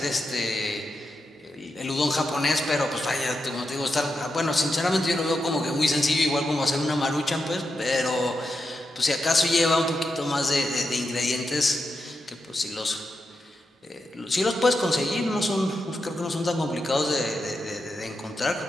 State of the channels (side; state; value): both; normal; correlation 0.87